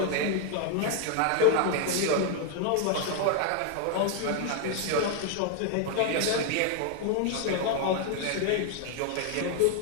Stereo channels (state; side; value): different; both; correlation 0.00